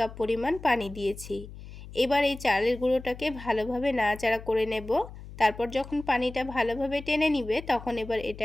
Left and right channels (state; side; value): noise; left; hum, 14 dB below the sound